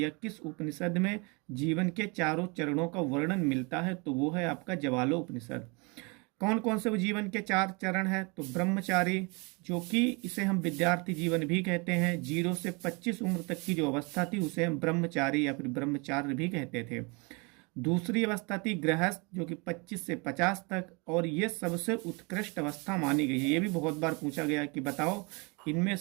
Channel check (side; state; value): left; quieter; 29.8 dB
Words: किस उपनिषद में जीवन के चारों चरणों का वर्णन मिलता है? तो वो है आपका जवालो उपनिषद। कौन कौन से वो जीवन के 4 चरण है? तो ब्रह्मचारी, जो कि इसे हम विद्यार्थी जीवन भी कहते हैं। 0 से 25 उम्र तक की जो अवस्था थी उसे हम ब्रह्मचारी या फिर ब्रह्मचार्य भी कहते थे। दूसरी अवस्था थी गृहस्थ, जो कि 25 से 50 तक, और ये सबसे उत्कृष्ट अवस्था मानी गई है। ये भी बहुत बार पूछा गया कि बताओ इनमें